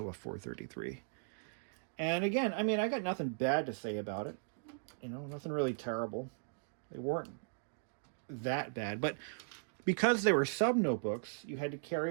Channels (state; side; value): silent; left; digital silence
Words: a 433. And again, I mean, I got nothing bad to say about it. You know, nothing really terrible. They weren't that bad, but because they were sub notebooks, you had to